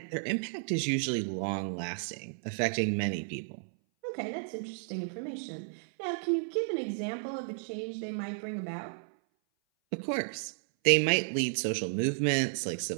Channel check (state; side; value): silent; left; 56 dB below the other